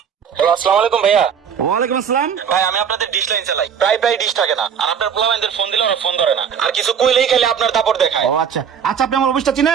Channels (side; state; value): left; quieter; 7.6 dB